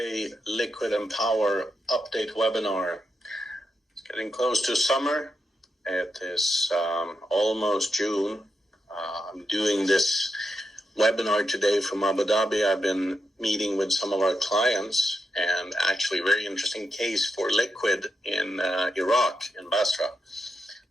Liquid and Power update webinar. It's getting close to summer. It is almost June. I'm doing this webinar today from Abu Dhabi. I've been meeting with some of our clients and actually very interesting case for liquid in Iraq, in Basra.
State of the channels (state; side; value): normal; both; correlation 0.85